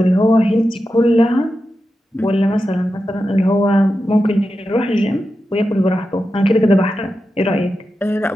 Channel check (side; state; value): both; normal; correlation 0.90